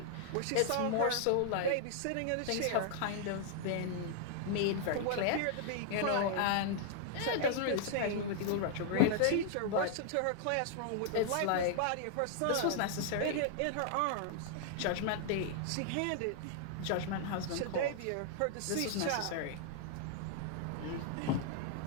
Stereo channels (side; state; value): both; different; correlation -0.01